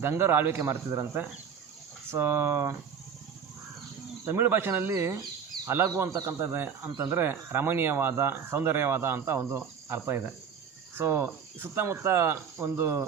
ಗಂಗರು ಆಳ್ವಿಕೆ ಮಾಡ್ತಿದ್ರಂತೆ. ಸೊ ತಮಿಳು ಭಾಷೆಯಲ್ಲಿ ಹಲಗು ಅಂತಕ್ಕಂಥದ್ದು ಅಂತಂದರೆ ರಮಣೀಯವಾದ, ಸೌಂದರ್ಯವಾದ ಅಂತ ಒಂದು ಅರ್ಥ ಇದೆ. ಸೊ ಸುತ್ತಮುತ್ತ ಒಂದು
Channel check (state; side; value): quieter; left; 7.1 dB